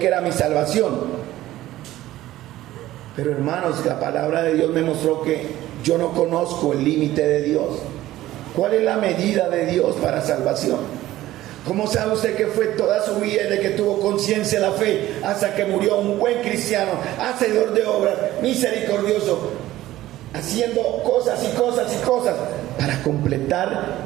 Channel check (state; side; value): quieter; left; 15.2 dB